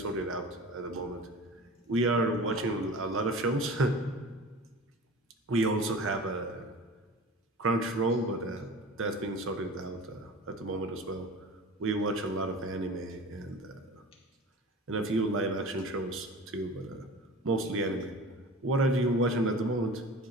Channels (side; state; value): both; normal; correlation 0.37